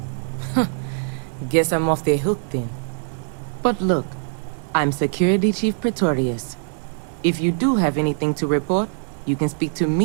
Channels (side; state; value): left; silent; digital silence